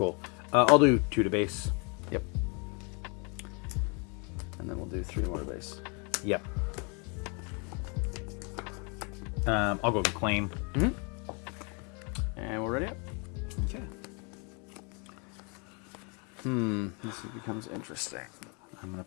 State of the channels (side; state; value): right; quieter; 33.9 dB